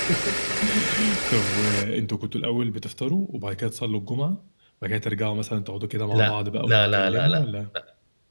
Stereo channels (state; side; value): inverted; both; correlation -1.00